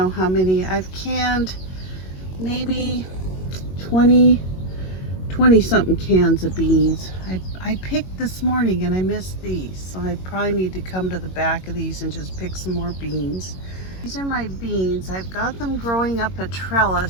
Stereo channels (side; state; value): right; late; 22 ms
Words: how many. I've canned maybe 20 something cans of beans. I picked this morning and I missed these, so I probably need to come to the back of these and just pick some more beans. These are my beans. I've got them growing up a